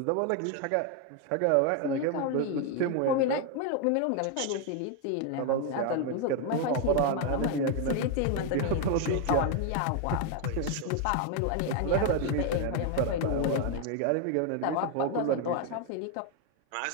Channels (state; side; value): different; both; correlation 0.01